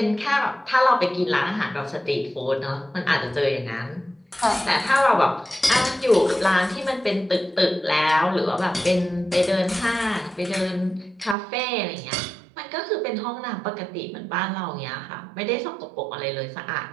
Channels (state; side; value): drops out; left; at 11.4 s